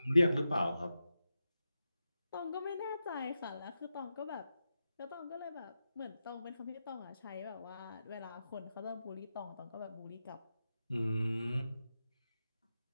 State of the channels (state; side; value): inverted; both; correlation -0.89